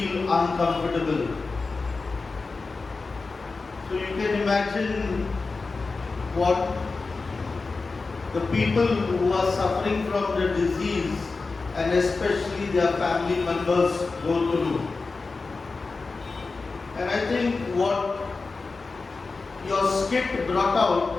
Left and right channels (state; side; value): quieter; right; 4.0 dB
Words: uncomfortable. So you can imagine what the people who are suffering from the disease and especially their family members go through. And I think what your skit brought